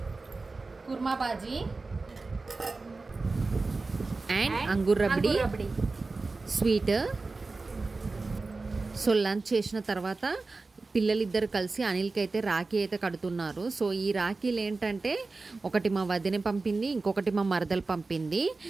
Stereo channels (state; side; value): quieter; left; 3.7 dB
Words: kurma bhaji and Angoor rabri sweet. So lunch చేసిన తర్వాత పిల్లలిద్దరు కలిసి అనిల్కి అయితే రాఖీ అయితే కడుతున్నారు. సో ఈ రాఖీలు ఏంటంటే ఒకటి మా వదిన పంపింది, ఇంకొకటి మా మరదలు పంపింది.